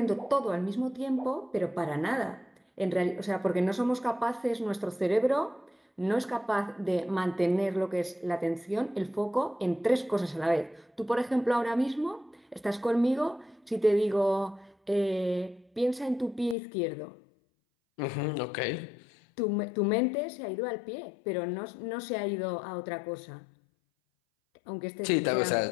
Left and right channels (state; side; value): drops out; right; at 16.6 s